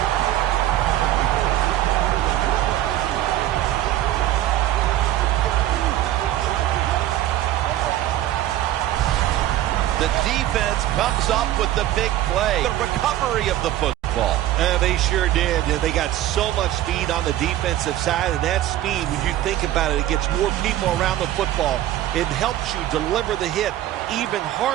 The defense comes up with the big play. The recovery of the football. football. They sure did. They got so much speed on the defensive side, and that speed, when you think about it, it gets more people around the football. It helps you deliver the hit even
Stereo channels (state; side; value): quieter; left; 13.6 dB